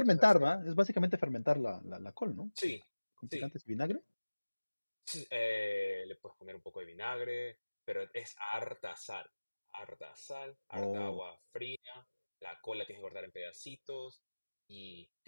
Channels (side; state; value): both; inverted; correlation -1.00